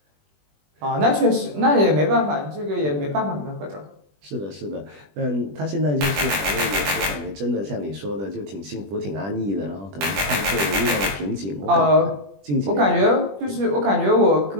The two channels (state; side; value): late; left; 20 ms